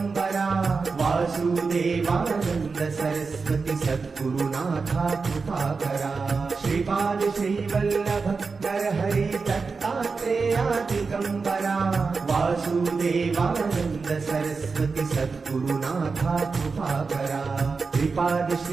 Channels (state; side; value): quieter; left; 4.6 dB